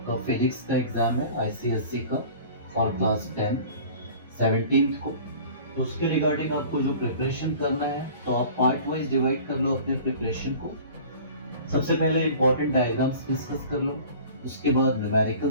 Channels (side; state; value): both; inverted; correlation -0.43